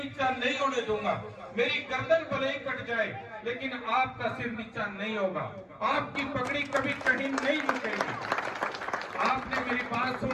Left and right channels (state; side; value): identical; both; correlation 1.00